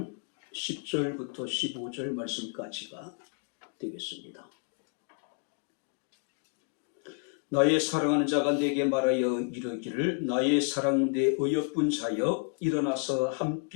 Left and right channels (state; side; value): quieter; right; 38.6 dB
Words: 10절부터 15절 말씀까지가 되겠습니다. 나의 사랑하는 자가 내게 말하여 이르기를 나의 사랑 내 어여쁜 자여 일어나서